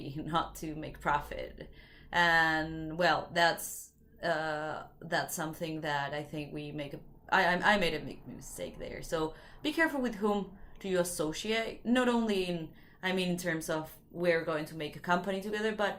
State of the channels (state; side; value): identical; both; correlation 1.00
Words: not to make profit. And well, that's something that I think we make I made a mistake there. So be careful with whom do you associate, not only in terms of we're going to make a company together, but